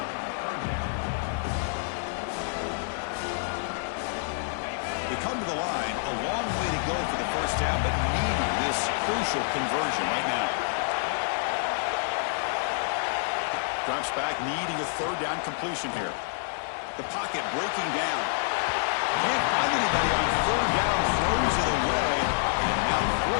They come to the line, a long way to go for the first down, but needing this crucial conversion right now. Drops back, needing a third down completion here. The pocket breaking down. Can't find anybody on third down, throws it away, and now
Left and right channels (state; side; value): silent; right; digital silence